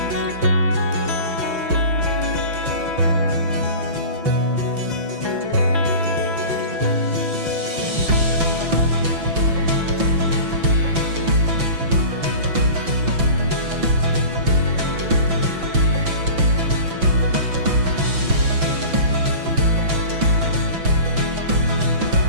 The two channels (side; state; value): left; late; 6.0 ms